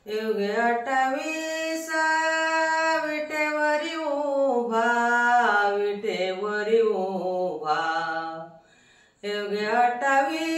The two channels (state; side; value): identical; both; correlation 1.00